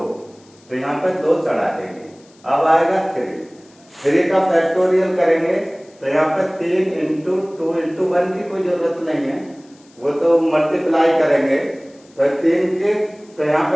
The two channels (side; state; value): left; noise; hiss, 30 dB below the sound